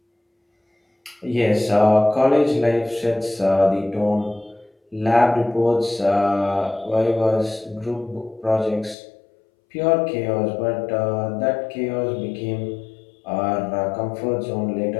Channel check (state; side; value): drops out; right; at 9.0 s